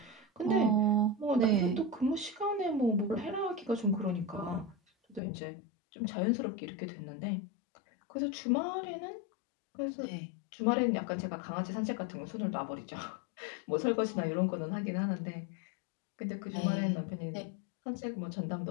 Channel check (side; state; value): right; drops out; at 5.2 s